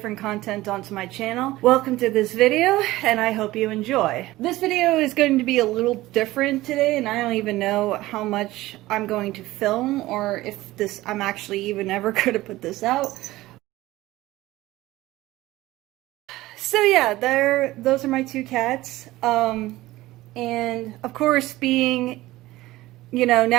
content onto my channel. Welcome to this video, and I hope you enjoy. This video is going to be a little different today, and I don't even know how much I'm going to film, or if I'm actually even ever going to put this out. So yeah, those are my two cats. And of course, being,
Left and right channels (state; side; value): quieter; left; 17.6 dB